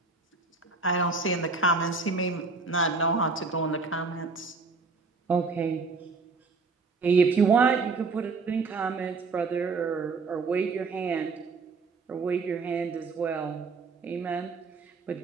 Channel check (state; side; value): quieter; left; 4.3 dB